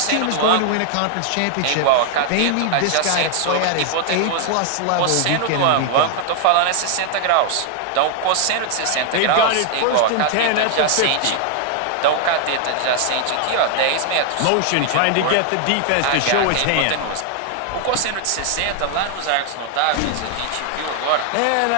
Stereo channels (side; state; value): both; different; correlation 0.00